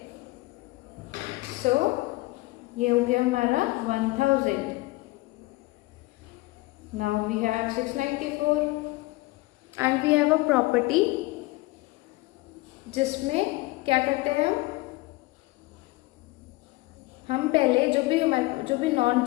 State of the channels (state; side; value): quieter; right; 21.0 dB